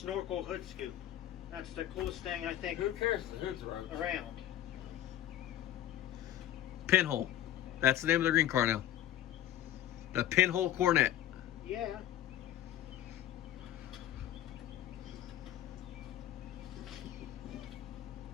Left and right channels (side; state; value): right; quieter; 12.5 dB